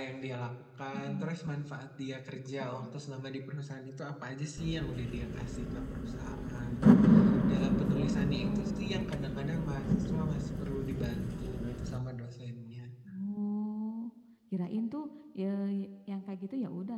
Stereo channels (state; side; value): identical; both; correlation 1.00